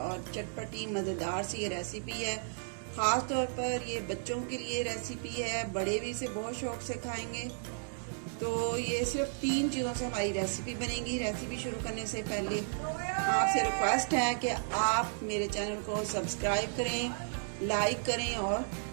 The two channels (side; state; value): left; silent; 55 dB below the other